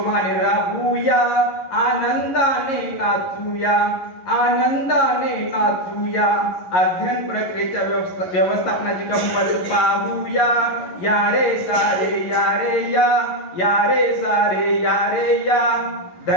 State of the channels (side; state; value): right; late; 11 ms